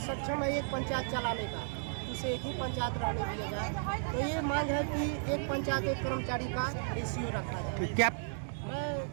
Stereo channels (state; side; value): silent; left; digital silence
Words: है एक पंचायत चलाने का, उसे एक ही पंचायत रहने दिया जाए। तो ये मांग है कि एक पंचायत एक कर्मचारी का रेशियो रखा जाए। क्या मैं